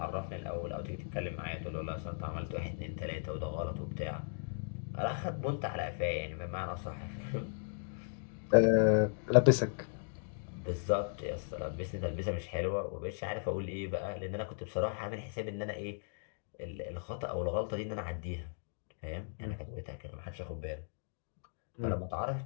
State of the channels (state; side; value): silent; right; digital silence